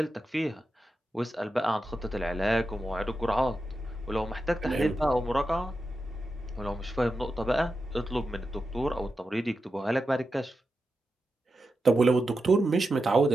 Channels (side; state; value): both; normal; correlation 0.89